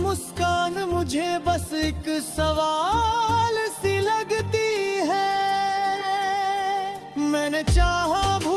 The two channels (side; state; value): both; identical; correlation 1.00